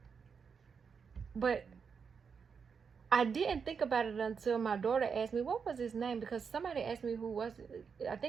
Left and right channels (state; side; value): quieter; left; 6.1 dB